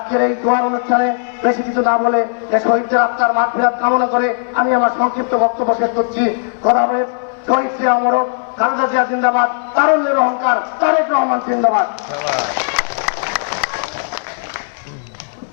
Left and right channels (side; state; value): right; silent; 61 dB below the other